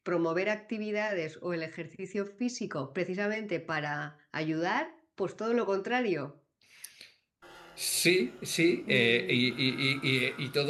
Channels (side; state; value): both; identical; correlation 1.00